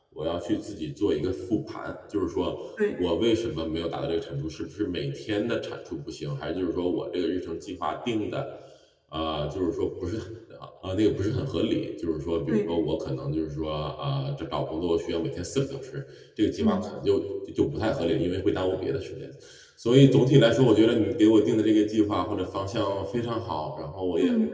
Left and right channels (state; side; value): identical; both; correlation 1.00